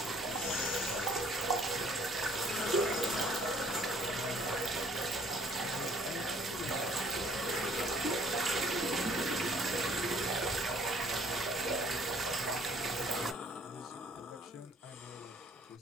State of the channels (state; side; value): normal; both; correlation 0.59